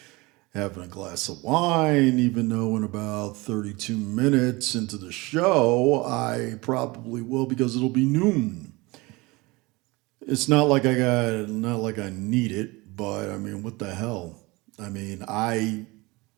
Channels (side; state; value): left; quieter; 23.6 dB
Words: having a glass of wine, even though in about 32 minutes into the show, I probably will because it'll be noon. It's not like I need it, but I mean, what the hell? I mean, I